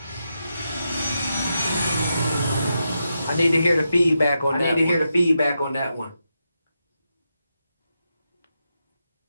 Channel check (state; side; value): inverted; both; correlation -0.86